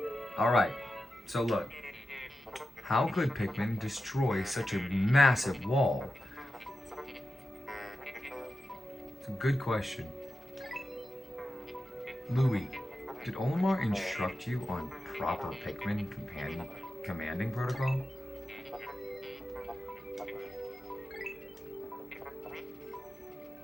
All right, so look, how could Pikmin destroy such a massive wall? It's a good question. Louis, did Olimar instruct you on proper Pikmin commanding protocol?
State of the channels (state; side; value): normal; both; correlation 0.90